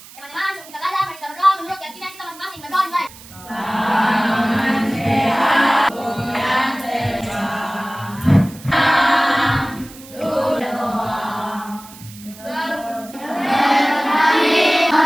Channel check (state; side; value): noise; right; hiss, 19 dB below the sound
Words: sebelum kita belajar, mari kita berdoa menurut keyakinan kita masing-masing. Berdoa dimulai. Tangan sehat, goyang terbang.